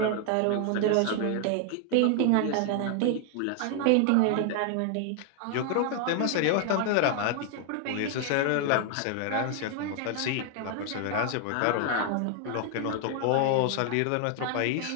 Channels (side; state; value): both; different; correlation 0.00